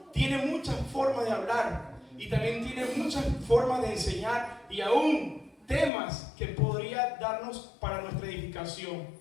tiene muchas formas de hablar y también tiene muchas formas de enseñar y aún temas que podría darnos para nuestra edificación.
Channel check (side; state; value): right; drops out; at 5.9 s